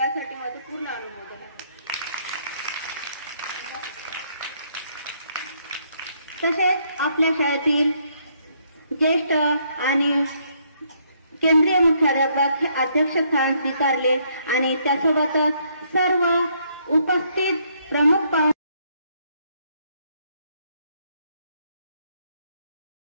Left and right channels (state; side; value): inverted; both; correlation -0.70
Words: माझं पूर्ण अनुमोदन आहे। तसेच आपल्या शाळेतील ज्येष्ठ आणि केंद्रीय मुख्याध्यापक हे अध्यक्षस्थान स्वीकारले आणि त्यासोबतच सर्व उपस्थित प्रमुख